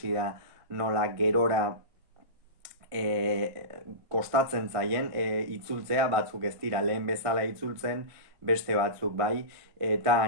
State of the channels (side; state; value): left; late; 1.5 ms